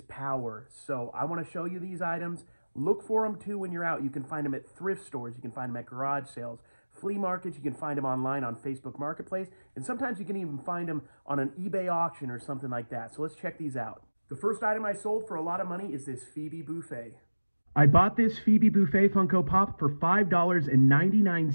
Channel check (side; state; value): both; inverted; correlation -1.00